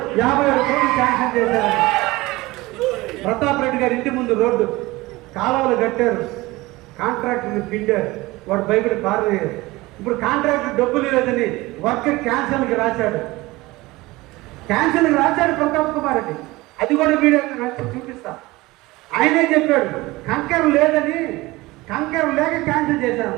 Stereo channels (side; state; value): left; quieter; 20.5 dB